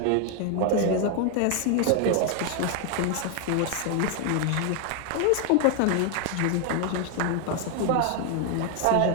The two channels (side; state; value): both; different; correlation 0.01